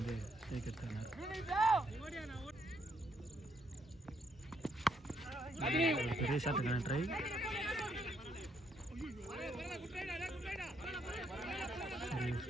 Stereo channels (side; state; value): both; normal; correlation 0.74